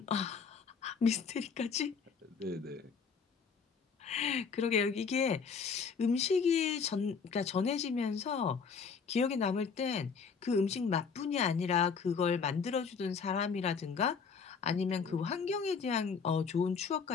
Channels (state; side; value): quieter; right; 5.8 dB